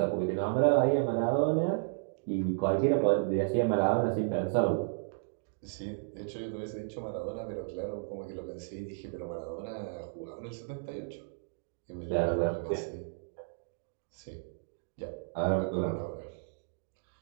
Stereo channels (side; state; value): left; silent; digital silence